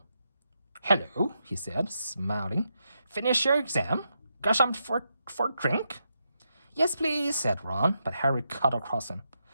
"Hello," he said, smiling. "Finish your exam? Got something for drink?" "Yes, please," said Ron, but Harry cut across him.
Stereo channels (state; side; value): inverted; both; correlation -0.84